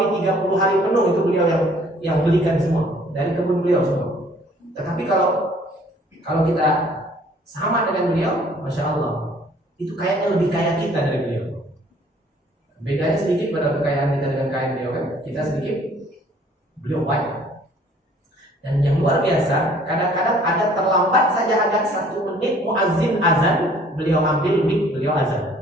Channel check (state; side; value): normal; both; correlation 0.57